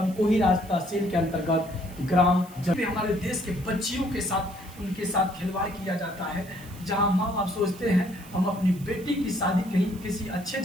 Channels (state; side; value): noise; right; hiss, 21 dB below the sound